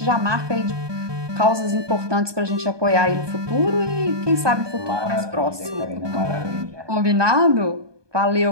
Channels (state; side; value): late; left; 1.2 ms